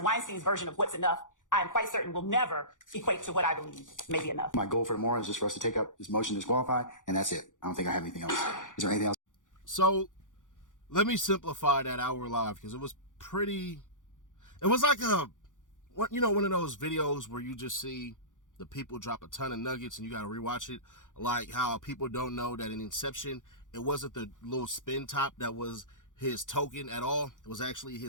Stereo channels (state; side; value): late; right; 0.87 ms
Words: Weinstein's version of what's enough, I am quite certain will never equate to what I believe may be enough. My goal for tomorrow is just for us to take up this motion to disqualify, and that's it. I don't think I have anything else. Is there anything else? So let me simplify that hour live, because it was like one of those videos where you just see the people drop a ton of nuggets and you got to rewatch it. Like how people don't know that in Inception, it wasn't the little spin top that was his token at all. It was actually